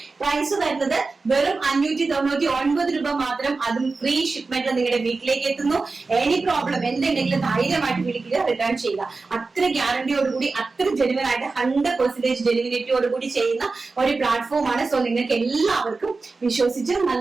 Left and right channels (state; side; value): quieter; left; 3.9 dB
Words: പ്രൈസ് വരുന്നത് വെറും 599 രൂപ മാത്രം. അതും ഫ്രീ ഷിപ്മെന്റ് നിങ്ങളുടെ വീട്ടിലേക്ക് എത്തുന്നു. എനി പ്രോബ്ലം എന്തുണ്ടെങ്കിലും ധൈര്യമായിട്ട് വിളിക്കുക, റിട്ടേൺ ചെയ്യുക. അത്ര ഗ്യാരണ്ടിയോടുകൂടി, അത്ര ജെനുവൻ ആയിട്ട് 100% ജെനുവിനിറ്റിയോടുകൂടി ചെയ്യുന്ന ഒരു പ്ലാറ്റ്ഫോം ആണ്. സോ നിങ്ങൾക്ക് എല്ലാവർക്കും വിശ്വസിച്ച്